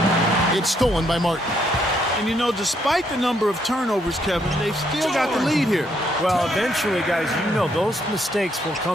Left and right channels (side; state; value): both; normal; correlation 0.73